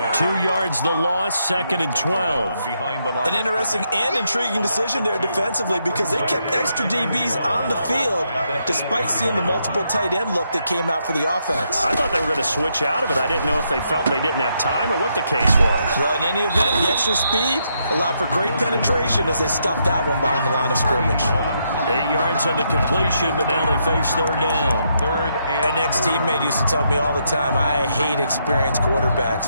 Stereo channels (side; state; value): both; inverted; correlation -0.78